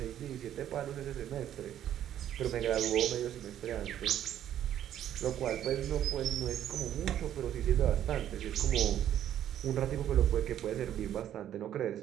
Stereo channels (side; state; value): left; quieter; 11.0 dB